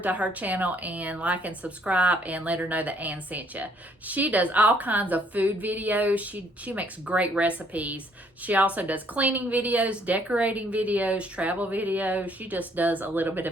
her channel and like and subscribe and let her know that Ann sent you. She does all kinds of food videos. She makes great recipes. She also does cleaning videos, decorating videos, travel videos. She just does a little bit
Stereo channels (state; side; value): normal; both; correlation 0.65